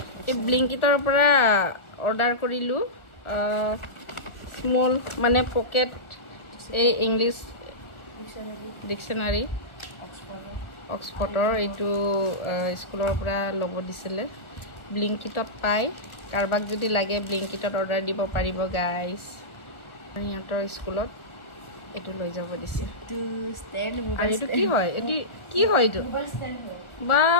এই ব্লিংকিটৰ পৰা অৰ্ডাৰ কৰিলোঁ স্মল মানে পকেট এই ইংলিছ ডিকশ্যনাৰী অক্সফৰ্ডৰ এইটো স্কুলৰ পৰা ল'ব দিছিলে ব্লিংকিটত পায় কাৰোবাক যদি লাগে ব্লিংকিটত অৰ্ডাৰ দিব পাৰিব গাইজ সিহঁতৰ স্কুলত এইটো লৈ যাব দিছে আৰু এইটো কি হয় এইটো কি হয় এইটো বা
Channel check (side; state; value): right; late; 1.4 ms